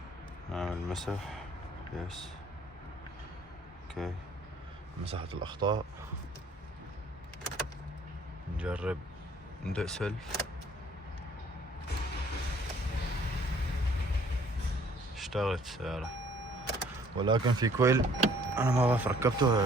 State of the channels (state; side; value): normal; both; correlation 0.59